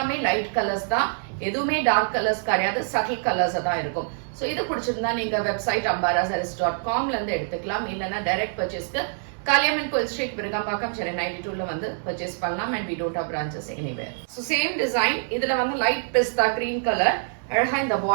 லைட் கலர்ஸ் தான், எதுவுமே டார்க் கலர்ஸ் கிடையாது, சட்டில் கலர்ஸ் தான் இருக்கும். ஸோ இது பிடிச்சிருந்தா நீங்க வெப்சைட் ambarasarees.comல இருந்து எடுத்துக்கலாம். இல்லைன்னா டைரக்ட் பர்ச்சேஸ்க்கு காளியம்மன் கோயில் ஸ்ட்ரீட், விருகம்பாக்கம், சென்னை 92ல வந்து பர்ச்சேஸ் பண்ணலாம். And we don't have branches anywhere. So same design, இதுல வந்து லைட் பிஸ்தா கிரீன் கலர், அழகா இந்த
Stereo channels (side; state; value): left; silent; digital silence